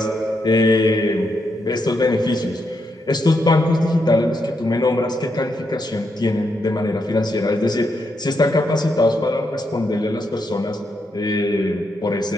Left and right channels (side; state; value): both; normal; correlation 0.81